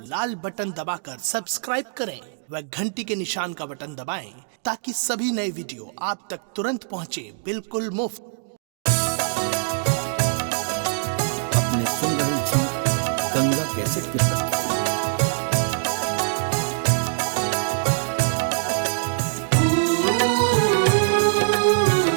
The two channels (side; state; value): left; silent; digital silence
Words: लाल बटन दबाकर सब्सक्राइब करें व घंटी के निशान का बटन दबाएं ताकि सभी नए वीडियो आप तक तुरंत पहुंचे बिल्कुल मुफ्त। अपने सुन रहे थी गंगा कैसेट के प्रस्तुति।